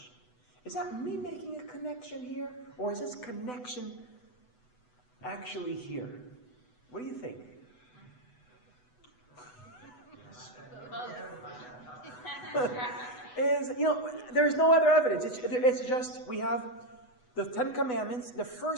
Is that me making a connection here? Or is this connection actually here? What do you think? is, there's no other evidence. It's just, we have the 10 Commandments. The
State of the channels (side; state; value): right; late; 8.0 ms